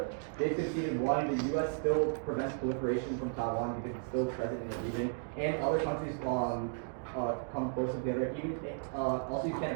they've conceded one, the U.S. still prevents proliferation from Taiwan because it's still present in the region, and other countries come close together. Even also, you can't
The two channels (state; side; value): silent; left; digital silence